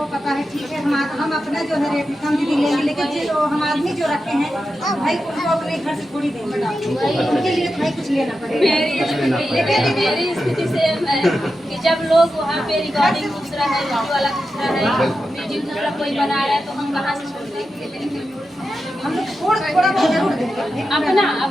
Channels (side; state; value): both; normal; correlation 0.90